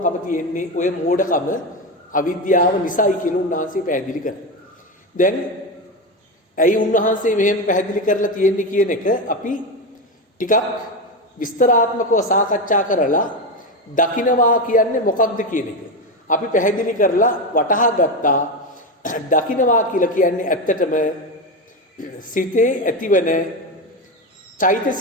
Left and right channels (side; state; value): both; normal; correlation 0.16